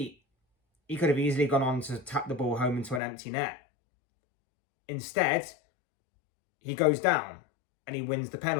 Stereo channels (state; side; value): drops out; right; at 3.0 s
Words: he could have easily gone on to tap the ball home into an empty net. Instead, he goes down and he wins the